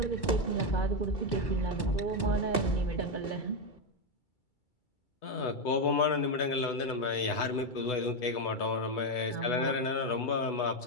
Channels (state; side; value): late; right; 2.3 ms